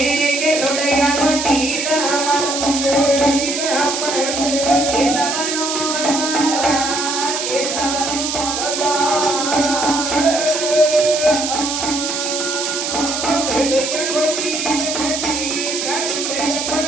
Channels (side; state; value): right; noise; hiss, 3 dB below the sound